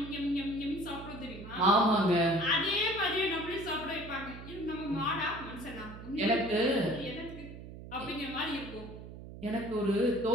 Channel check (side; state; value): right; noise; hum, 13 dB below the sound